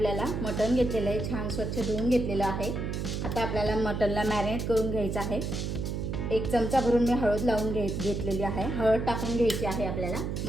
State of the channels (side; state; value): right; noise; hum, 3 dB below the sound